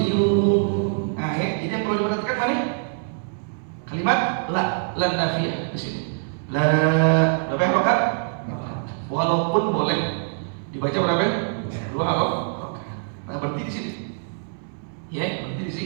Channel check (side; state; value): left; silent; 63 dB below the other